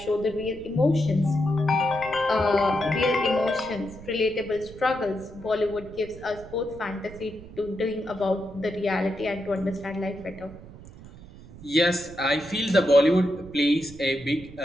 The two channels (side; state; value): right; noise; rumble, 17 dB below the sound